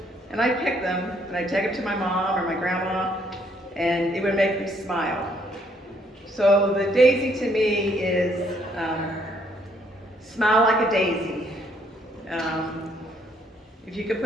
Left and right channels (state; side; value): normal; both; correlation 0.68